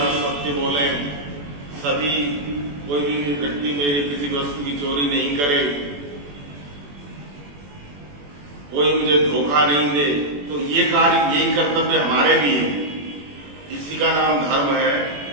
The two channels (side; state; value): left; late; 21 ms